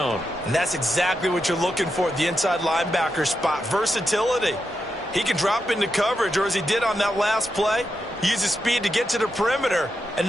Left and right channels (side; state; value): both; normal; correlation 0.86